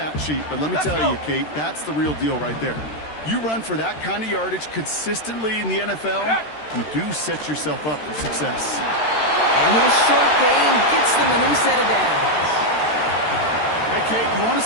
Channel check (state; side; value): late; right; 13 ms